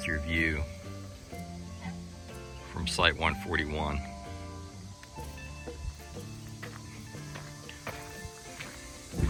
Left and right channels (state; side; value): identical; both; correlation 1.00